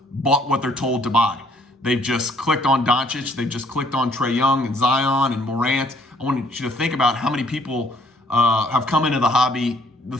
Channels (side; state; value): both; normal; correlation 0.63